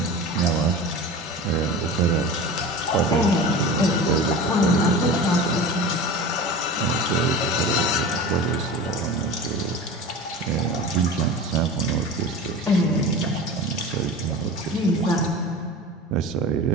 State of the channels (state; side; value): normal; both; correlation 0.33